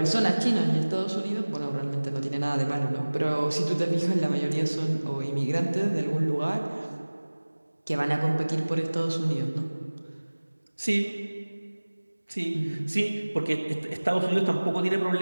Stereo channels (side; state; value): both; inverted; correlation -1.00